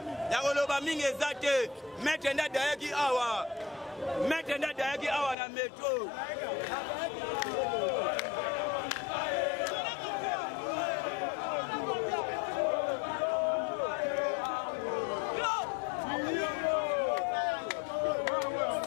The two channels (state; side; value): drops out; right; at 5.4 s